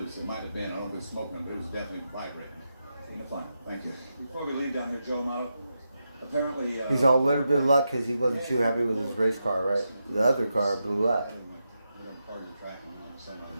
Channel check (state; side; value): inverted; both; correlation -0.87